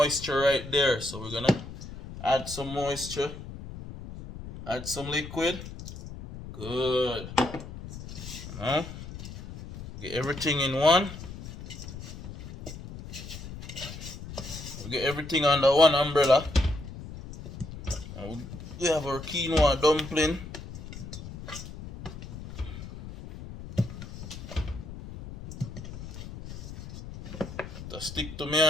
right there. So we're gonna add some moisture. Add some liquid. Good. Now, get everything in one. We get everything under one umbrella. And we have our quinoa dumpling. To stick to me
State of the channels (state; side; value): noise; left; rumble, 11 dB below the sound